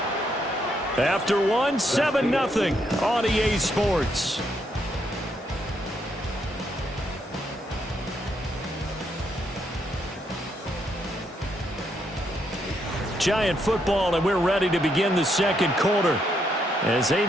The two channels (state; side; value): normal; both; correlation 0.76